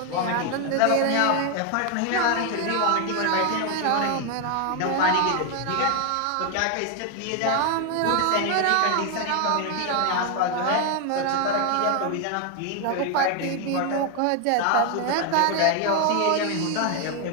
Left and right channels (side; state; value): both; different; correlation 0.00